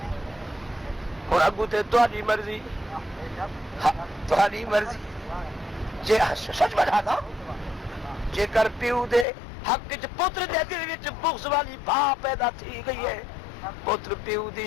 اور اگو تے تہاڈی مرضی تہاڈی مرضی جے سچ بتا دا جے کر پیو دے حق وچ پتر دے دل وچ بغض والی بھا پیدا تھی گئی ہے پتر پیو دی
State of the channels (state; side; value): drops out; right; at 9.2 s